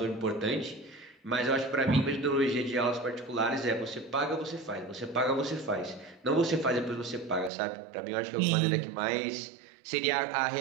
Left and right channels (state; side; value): drops out; left; at 7.5 s